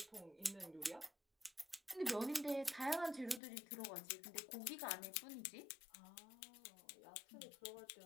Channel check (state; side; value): drops out; right; at 3.4 s